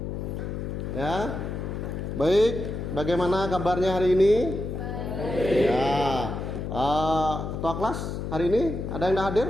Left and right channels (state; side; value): noise; left; hum, 5 dB below the sound